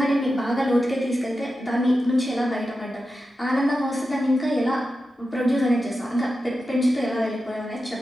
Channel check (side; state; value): both; normal; correlation 0.91